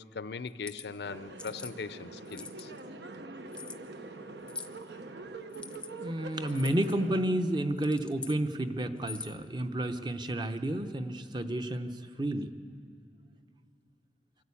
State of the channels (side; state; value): both; normal; correlation 0.74